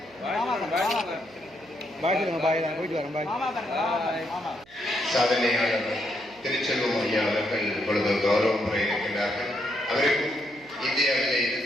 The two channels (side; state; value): right; noise; hum, 27 dB below the sound